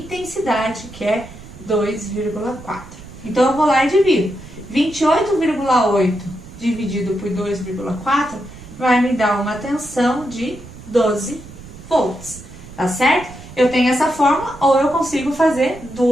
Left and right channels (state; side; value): noise; right; rumble, 17 dB below the sound